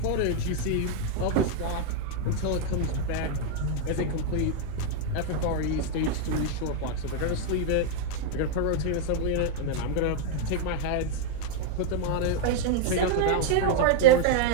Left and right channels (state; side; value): different; both; correlation 0.00